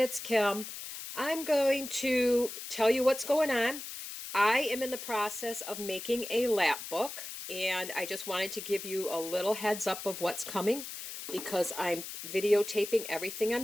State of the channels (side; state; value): left; noise; hiss, 9 dB below the sound